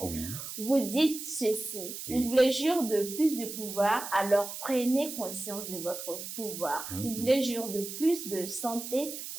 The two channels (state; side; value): noise; right; hiss, 8 dB below the sound